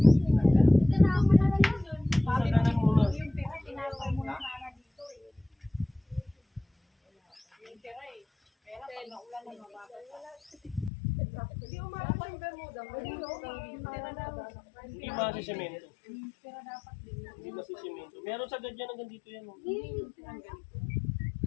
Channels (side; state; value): right; drops out; at 10.9 s